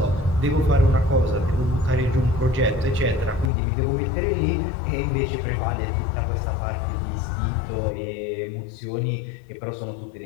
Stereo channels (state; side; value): drops out; right; at 3.5 s